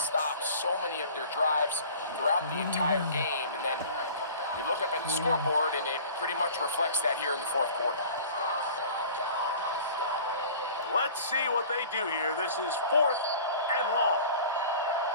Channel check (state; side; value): inverted; both; correlation -0.44